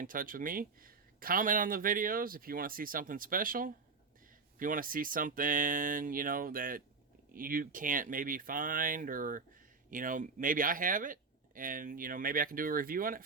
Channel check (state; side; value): quieter; left; 4.6 dB